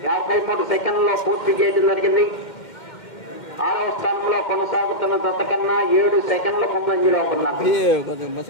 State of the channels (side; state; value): right; late; 2.1 ms